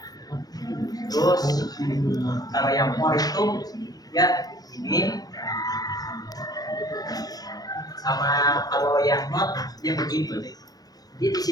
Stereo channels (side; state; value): right; late; 0.19 ms